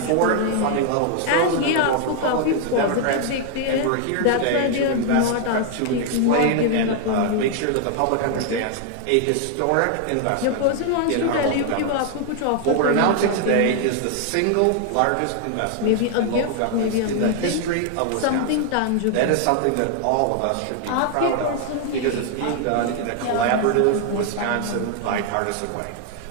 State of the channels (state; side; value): different; both; correlation 0.00